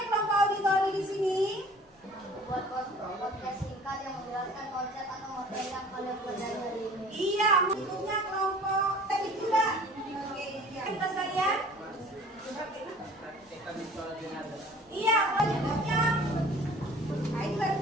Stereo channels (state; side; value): normal; both; correlation 0.48